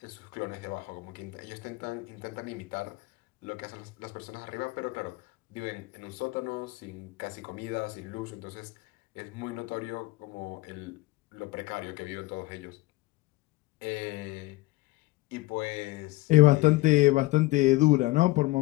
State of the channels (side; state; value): right; quieter; 20.2 dB